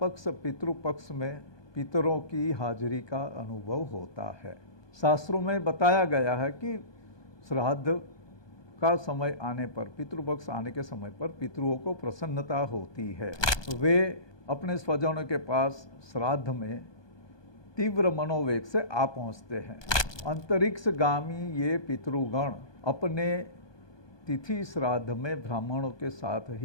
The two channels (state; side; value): late; right; 1.2 ms